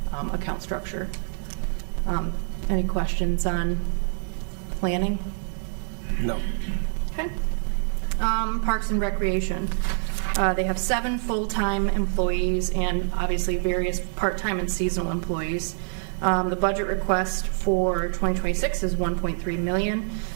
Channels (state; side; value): silent; left; digital silence